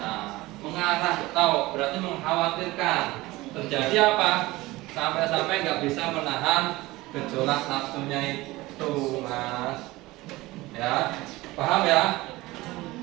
mengarah tahu berarti mengkhawatirkan terjadi apa? Sampai-sampai nggak bisa menahan gejolak nafsunya itu, mas. Ya, paham ya?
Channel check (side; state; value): left; quieter; 19.6 dB